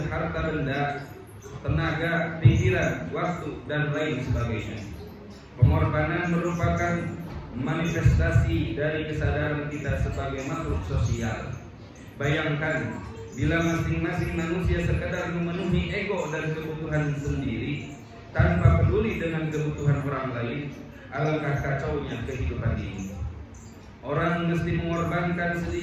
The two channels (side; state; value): both; identical; correlation 1.00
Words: harta benda, tenaga, pikiran, waktu, dan lain sebagainya. Pengorbanan merupakan manifestasi dari kesadaran kita sebagai makhluk sosial. Bayangkan bila masing-masing manusia sekadar memenuhi ego dan kebutuhan sendiri tanpa peduli dengan kebutuhan orang lain, alangkah kacaunya kehidupan ini. Orang mesti mengorbankan